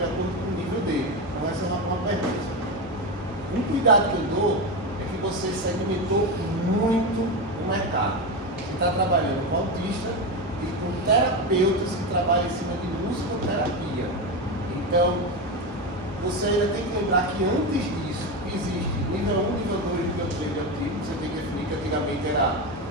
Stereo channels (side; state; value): both; normal; correlation 0.16